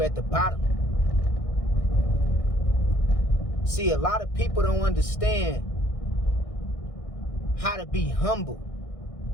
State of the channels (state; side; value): late; right; 1.6 ms